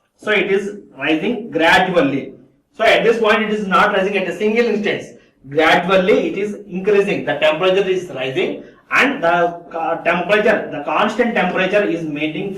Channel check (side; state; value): both; identical; correlation 1.00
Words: So it is rising gradually. So at this point it is not rising at a single instance. Gradually it is increasing. The temperature is rising, and the constant temperature is maintaining